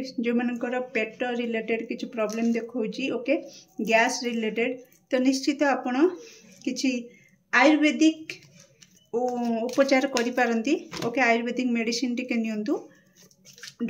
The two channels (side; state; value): both; identical; correlation 1.00